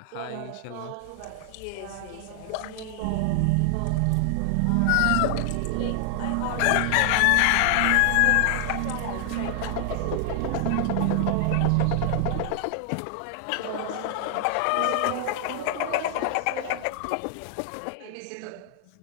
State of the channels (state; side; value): different; both; correlation 0.00